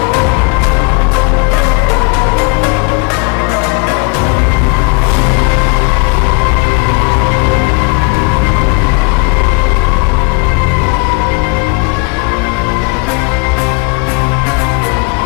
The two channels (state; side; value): quieter; right; 30.7 dB